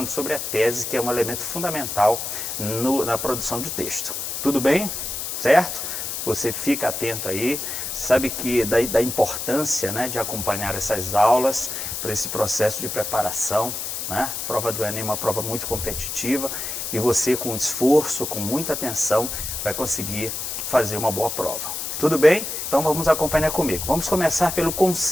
sobre a tese, que é um elemento fundamental na produção de texto. Tudo bem? Certo? Você fica atento aí, sabe que da importância, né, de acompanhar essas aulas para esse processo de preparação, né? A prova do Enem é uma prova muito competitiva e você, com esforço, com muita atenção, vai conseguir fazer uma boa prova. Tudo bem? Então vamos acompanhar comigo. Vamos começar pelo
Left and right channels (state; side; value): noise; left; hiss, 4 dB below the sound